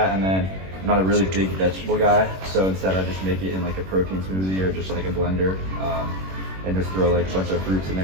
and then I'm not a really big vegetable guy, so instead I just make it in like a protein smoothie or just like a blender, and just throw like a bunch of fruits in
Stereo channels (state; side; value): late; left; 21 ms